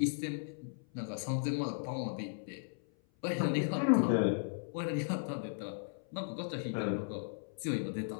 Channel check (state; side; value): silent; right; 54 dB below the other